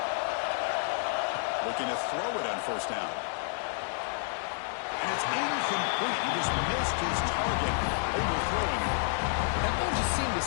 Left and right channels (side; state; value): right; silent; 58 dB below the other